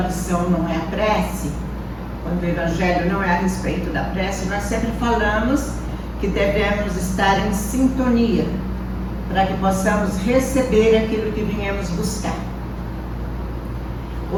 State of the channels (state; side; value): identical; both; correlation 1.00